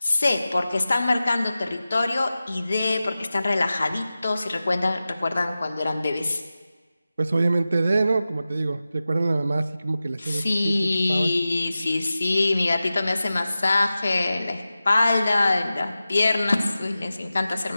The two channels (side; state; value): both; inverted; correlation -0.94